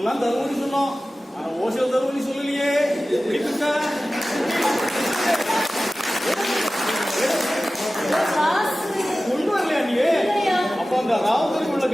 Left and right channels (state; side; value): normal; both; correlation 0.96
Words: தருவன்னு சொன்னோம். ஆனா ஓசல் தருவன்னு சொல்லலையே. கொண்டு வரலையா நீ? அப்ப அந்த ராவதற்கு உள்ள